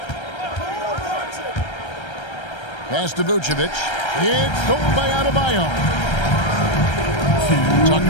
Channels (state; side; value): late; right; 1.3 ms